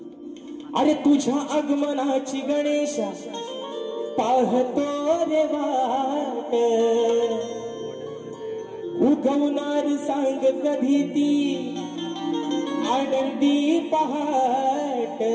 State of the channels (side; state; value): both; identical; correlation 1.00